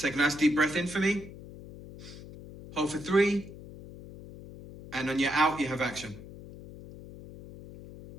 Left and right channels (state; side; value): noise; left; hum, 15 dB below the sound